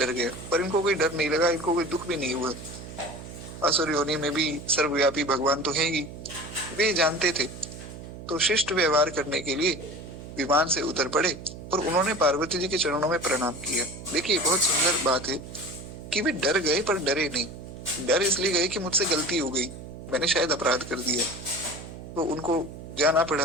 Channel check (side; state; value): right; noise; hum, 12 dB below the sound